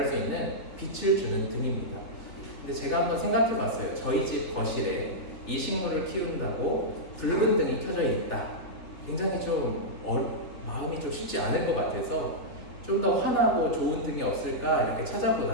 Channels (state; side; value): late; right; 3.5 ms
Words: 수 있는 빛을 주는 등입니다. 근데 제가 한번 생각해 봤어요. 저희 집 거실에 이 식물을 키운다고 붉은 등이 켜져 있다. 굉장히 좀 마음이 좀 쉽지 않을 것 같아서 좀 더 환하고 좋은 등이 없을까 이렇게